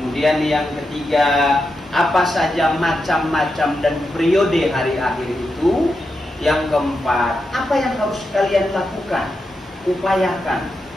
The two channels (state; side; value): normal; both; correlation 0.87